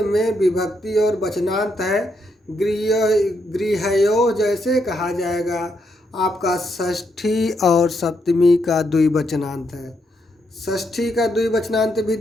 में विभक्ति और वचनांत है। गृहयोः जैसे कहा जाएगा आपका षष्ठी और सप्तमी का द्विवचनांत है। षष्ठी का द्विवचनांत भी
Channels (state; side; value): normal; both; correlation 0.78